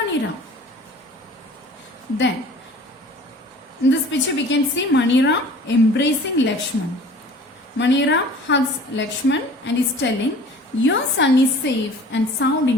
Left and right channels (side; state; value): both; normal; correlation 0.46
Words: Then, in this picture we can see Maniram embracing Lakshman. Maniram hugs Lakshman and is telling, your son is safe and sound